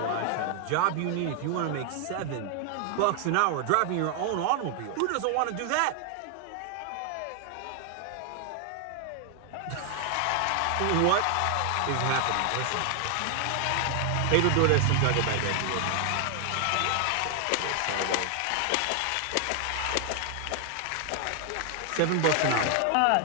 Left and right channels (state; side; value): different; both; correlation 0.00